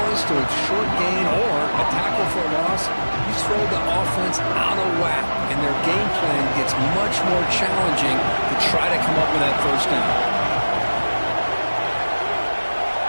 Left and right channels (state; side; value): inverted; both; correlation -1.00